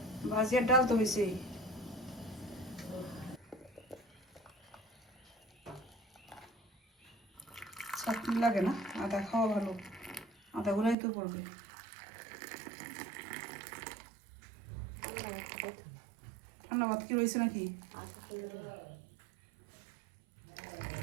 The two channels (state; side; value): drops out; left; at 11.0 s